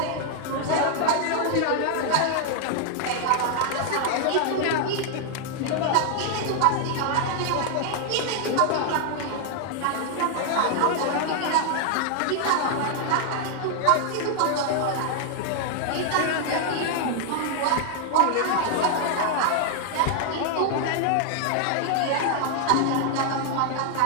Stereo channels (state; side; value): different; both; correlation 0.00